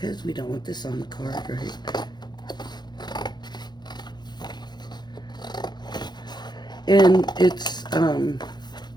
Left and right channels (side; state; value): right; late; 0.21 ms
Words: we don't want this on the card, right? And it's